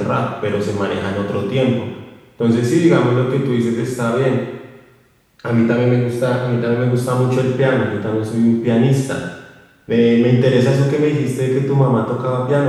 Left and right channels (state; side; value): identical; both; correlation 1.00